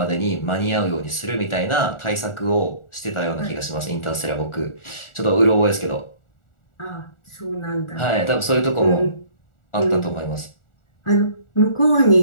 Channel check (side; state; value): right; late; 1.4 ms